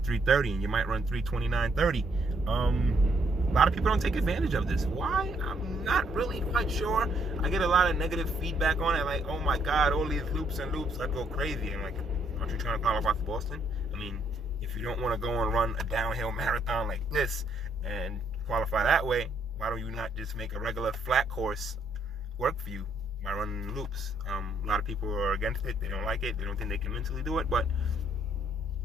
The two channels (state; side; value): normal; both; correlation 0.70